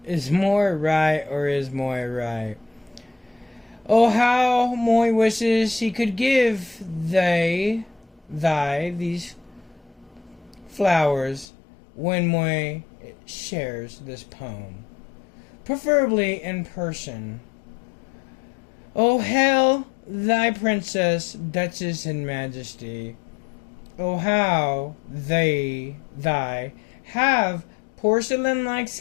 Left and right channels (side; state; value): right; drops out; at 11.5 s